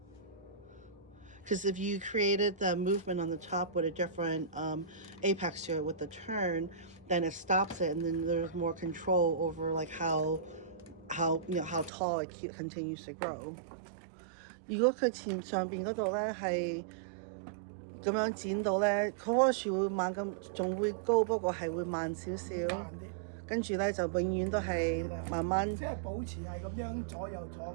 Because if you created the movement on the top with a different apex to it with the turn, then it stops it, and then there's more control over like how tall it continues to grow. 如果佢前上邊嗰度咧係咁樣剪到咧，佢棵樹會猛咁，仲會高，不過係會慢少少。慢啲，跟住咧就永遠都係慢慢。即係保持係咁樣左右左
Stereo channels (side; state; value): left; drops out; at 11.9 s